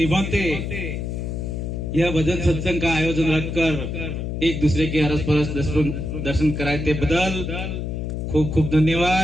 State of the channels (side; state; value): left; noise; hum, 4 dB below the sound